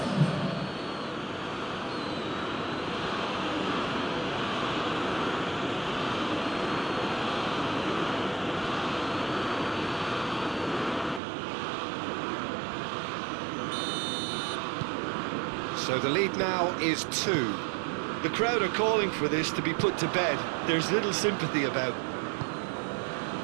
So the lead now is 2. The crowd are calling for this to be put to bed. There's little sympathy about.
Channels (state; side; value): drops out; left; at 11.2 s